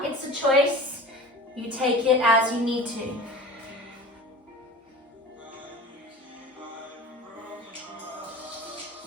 it's a choice. You take it as you need to.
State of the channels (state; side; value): normal; both; correlation 0.37